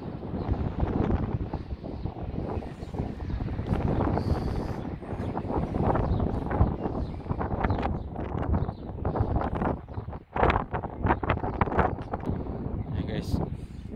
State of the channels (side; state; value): both; identical; correlation 1.00